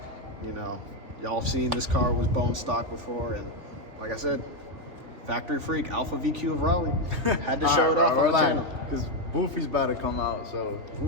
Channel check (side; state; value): left; late; 3.4 ms